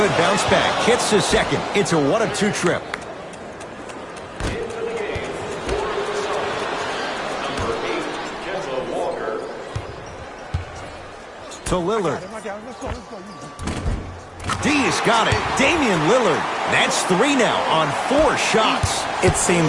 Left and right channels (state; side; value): identical; both; correlation 1.00